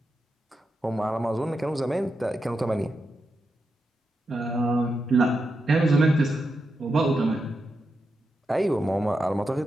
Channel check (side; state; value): both; normal; correlation 0.87